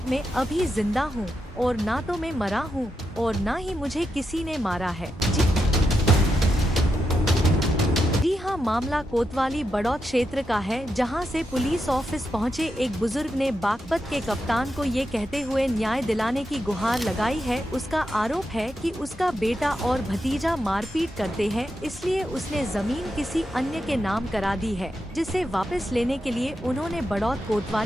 मैं अभी जिंदा हूँ और ना तो मैं मरा हूँ और ना ही मुझे किसी ने मारा है। जी हाँ, मामला कोतवाली बड़ौत क्षेत्र का है, जहां से पुलिस ऑफिस पहुंचे एक बुजुर्ग ने बागपत के कप्तान को ये कहते हुए न्याय दिलाने की गुहार लगाई है। उसका आरोप है कि उसका बेटा और भतीजा मारपीट करते हैं, इसलिए उसने जमीन किसी अन्य के नाम करा दी है, जिसे वापस लेने के लिए उन्होंने बड़ौत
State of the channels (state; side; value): normal; both; correlation 0.86